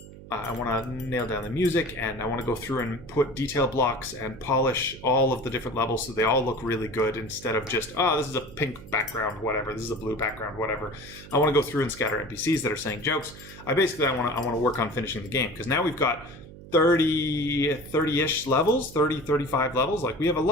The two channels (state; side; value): noise; right; hum, 17 dB below the sound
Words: I want to nail down the music, and I want to go through and put detail blocks and polish all of the different levels so they all look really good, instead of just, oh, this is a pink background, whatever, this is a blue background, whatever. I want to go through and scatter NPCs that are saying jokes. I want to work on finishing the game, because now we've got 30-ish levels, 35 levels. Like, we have a